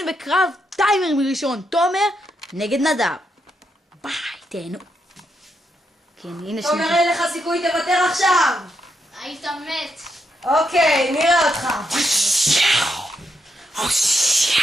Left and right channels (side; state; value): both; normal; correlation 0.80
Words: בקרב טיימרים ראשון, תומר נגד נדב. ביי, תהנו. כן, הנה שנייה. תומר, אין לך סיכוי, תוותר עכשיו. היית מת. אוקיי, נראה אותך.